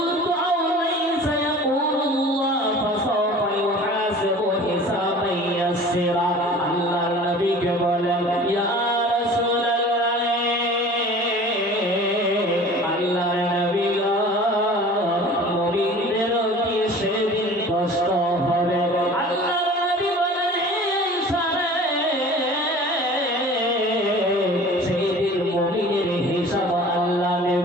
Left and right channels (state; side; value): normal; both; correlation 0.43